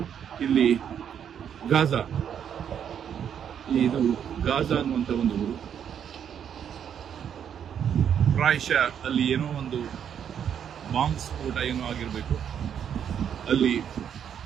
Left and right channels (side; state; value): left; quieter; 8.6 dB